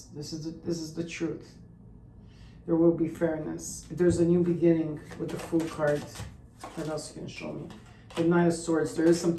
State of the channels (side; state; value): both; identical; correlation 1.00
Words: This is the truth. There will be fairness. There's a new beginning with the Fool card. What else you can show me? The Knight of Swords. There is some